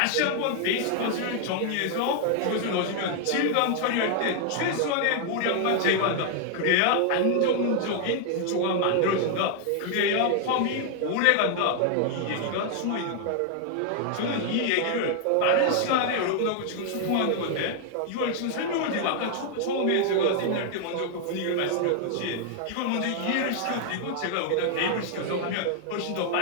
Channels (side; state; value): both; different; correlation 0.00